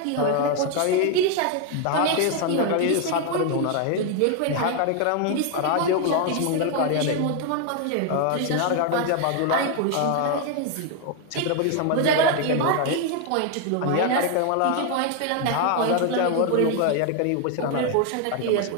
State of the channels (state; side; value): different; both; correlation 0.01